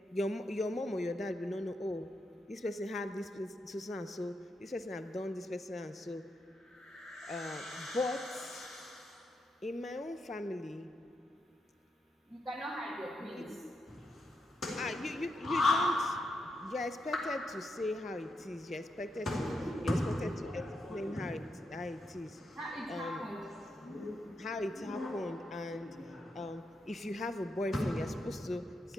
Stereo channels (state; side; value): normal; both; correlation 0.83